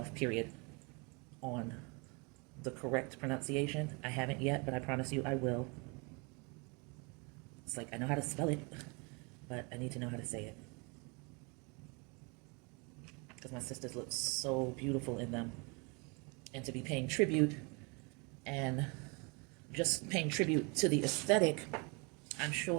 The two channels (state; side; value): quieter; left; 31.0 dB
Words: period, on the correct pronunciation. I haven't yet, but I promise you I will. It's like I know how to spell it, but I need to know how to say it. Because my sisters look so beautiful in them. And to be paying tribute and just paying tribute to the aesthetic, I'm